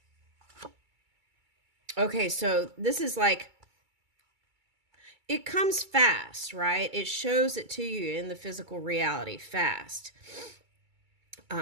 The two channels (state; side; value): late; left; 2.3 ms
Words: Okay. So this is like, it comes fast, right? It shows it to you in the physical reality fast.